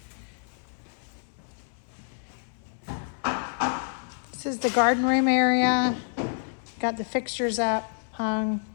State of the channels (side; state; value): right; silent; 59 dB below the other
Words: This is the garden room area. Got the fixtures up, hung,